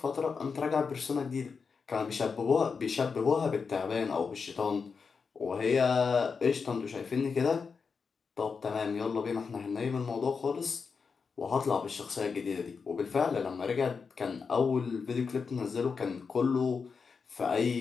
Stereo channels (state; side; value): quieter; right; 5.4 dB